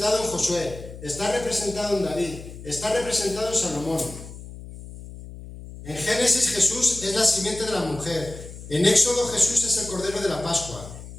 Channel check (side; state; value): left; noise; hum, 14 dB below the sound